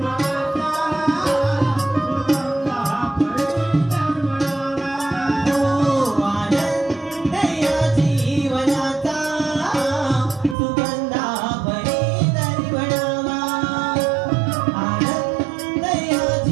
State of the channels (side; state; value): left; drops out; at 10.6 s